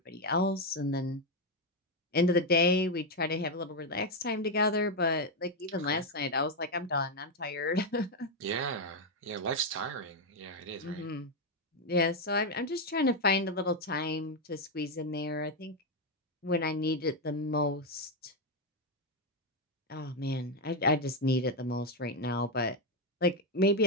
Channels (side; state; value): both; normal; correlation 0.05